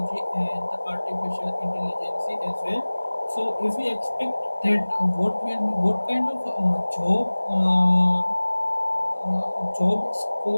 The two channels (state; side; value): inverted; both; correlation -1.00